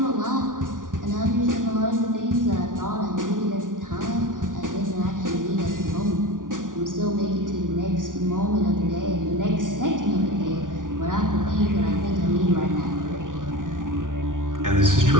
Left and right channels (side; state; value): left; late; 0.88 ms